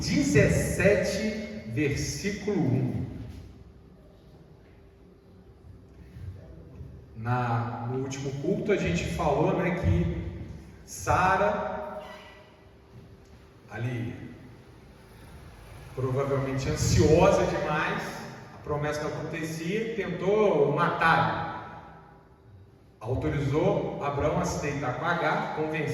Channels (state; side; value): identical; both; correlation 1.00